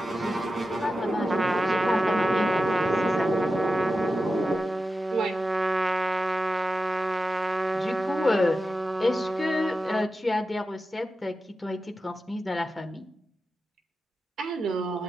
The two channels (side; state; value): both; normal; correlation 0.91